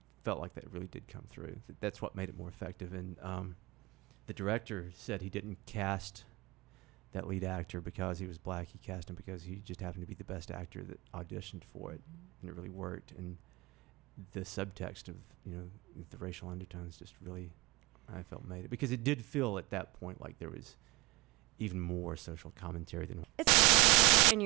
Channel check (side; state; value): left; quieter; 20.4 dB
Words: felt like that really did come through. That's what made it more effective. And the director said he didn't cast that lead actor because he was black. He cast him because he just happened to be the best actor that auditioned for it, and it really worked. And the subtext of the racial undertones just really, I felt, made it, because it did feel at that point like there was even more social commentary than. And